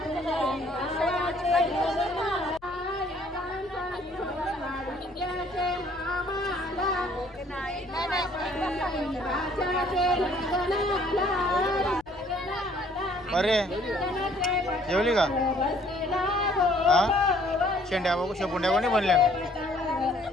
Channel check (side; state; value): left; noise; rumble, 28 dB below the sound